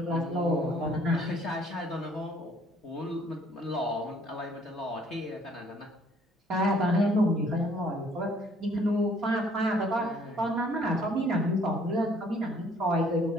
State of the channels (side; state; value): both; normal; correlation 0.60